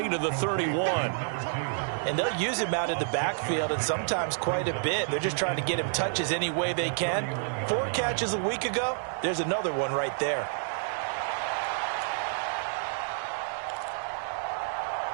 to the 31. And they'll use him out in the backfield, and sometimes quite a bit. They're just trying to get him touches any way they can. 4 catches a week ago. There's another one right there.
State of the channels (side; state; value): left; silent; digital silence